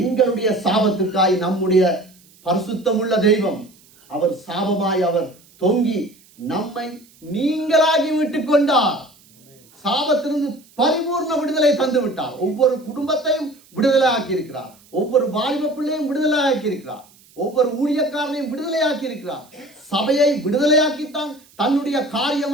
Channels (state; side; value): noise; right; hiss, 28 dB below the sound